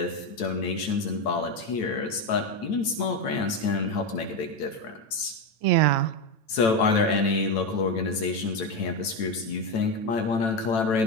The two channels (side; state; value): right; late; 9.0 ms